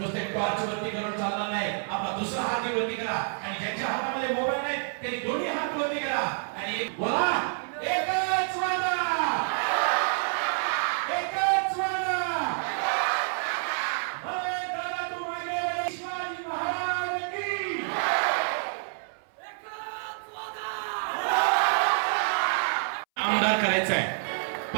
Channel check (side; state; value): left; silent; 59 dB below the other